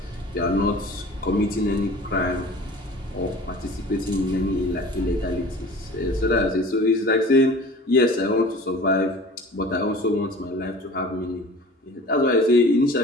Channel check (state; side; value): normal; both; correlation 0.42